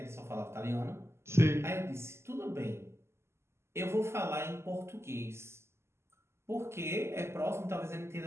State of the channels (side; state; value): left; late; 0.13 ms